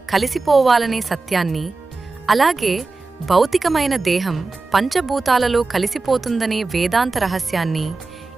కలిసిపోవాలనే సత్యాన్ని, అలాగే భౌతికమైన దేహం పంచభూతాలలో కలిసిపోతుందనే వేదాంత రహస్యాన్ని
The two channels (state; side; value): quieter; left; 3.7 dB